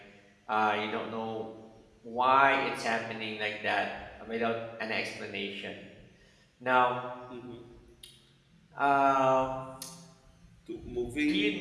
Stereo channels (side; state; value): both; identical; correlation 1.00